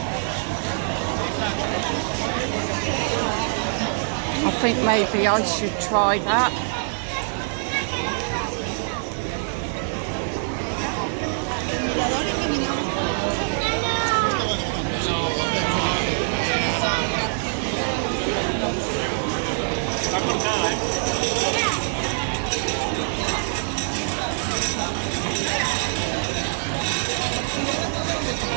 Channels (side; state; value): left; silent; digital silence